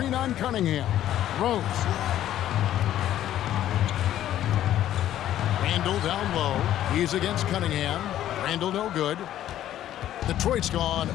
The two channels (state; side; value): quieter; right; 12.2 dB